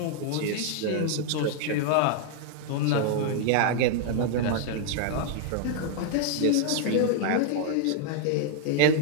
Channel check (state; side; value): different; both; correlation 0.00